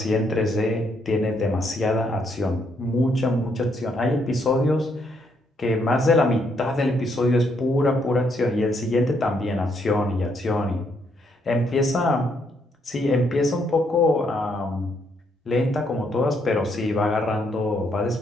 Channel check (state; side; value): normal; both; correlation 0.73